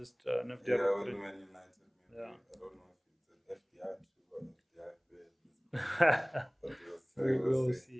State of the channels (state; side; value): identical; both; correlation 1.00